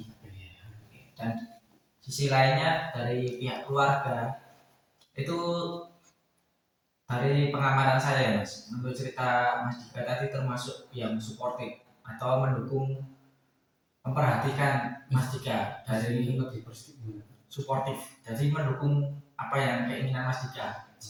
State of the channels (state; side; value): identical; both; correlation 1.00